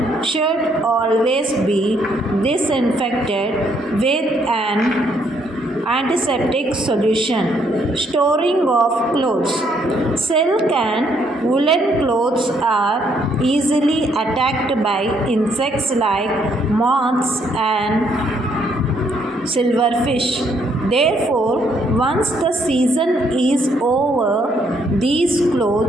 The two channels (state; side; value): normal; both; correlation 0.70